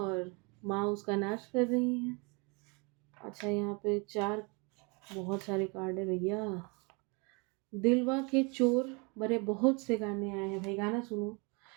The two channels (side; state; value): left; quieter; 30.6 dB